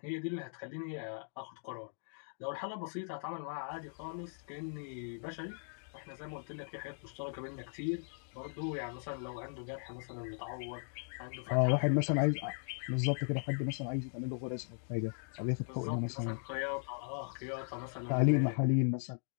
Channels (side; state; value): right; silent; digital silence